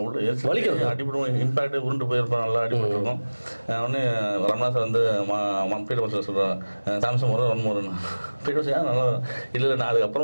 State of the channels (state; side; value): inverted; both; correlation -1.00